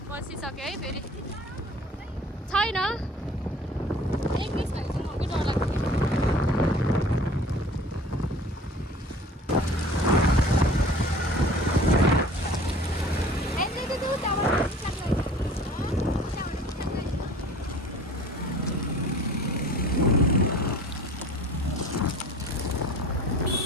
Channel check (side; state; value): both; normal; correlation 0.47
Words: बसिसक्यो है फेरि। छैन, एक मिस भएपछि मलाई डर लाग्छ।